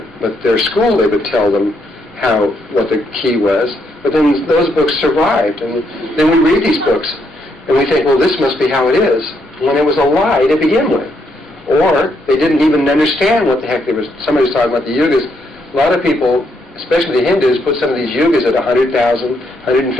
but their school, they would tell them what the key was. But then those books survived, and then we read these books. And we think, well, this must be how it is, when it was a lie to begin with. Or they didn't even understand what the heck they was. Somebody was talking about the yugas. A lot of people, especially the Hindus, put some of these yugas at 100,000,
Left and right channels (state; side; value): normal; both; correlation 0.76